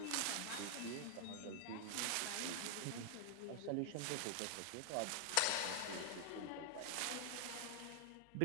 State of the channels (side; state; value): both; different; correlation 0.00